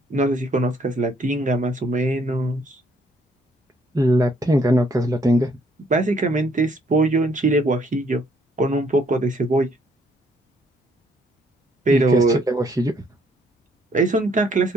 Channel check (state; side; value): normal; both; correlation 0.67